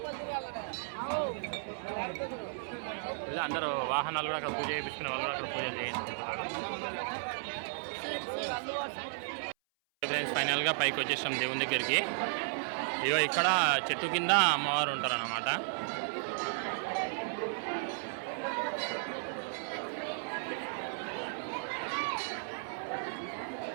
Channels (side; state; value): left; silent; 55 dB below the other